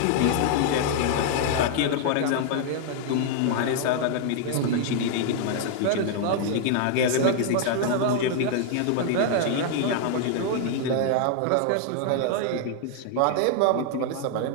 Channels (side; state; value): both; different; correlation 0.00